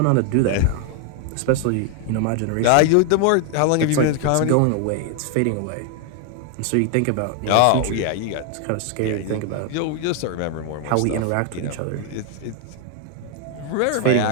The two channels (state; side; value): different; both; correlation 0.00